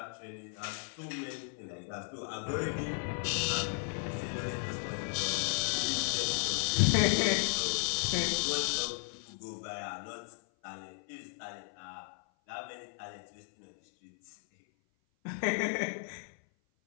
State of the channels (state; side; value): silent; right; 55 dB below the other